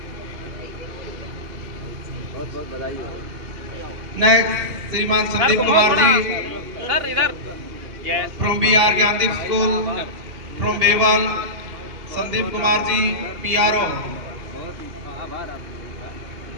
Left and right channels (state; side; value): late; left; 2.8 ms